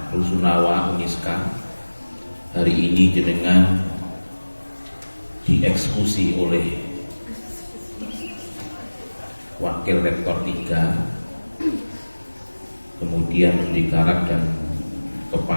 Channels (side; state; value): both; inverted; correlation -1.00